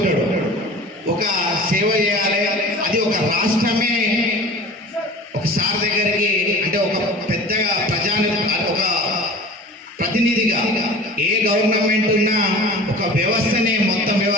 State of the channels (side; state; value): both; normal; correlation 0.39